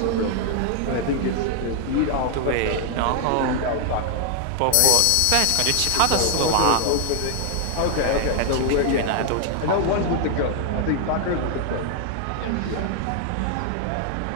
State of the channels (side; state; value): both; different; correlation 0.00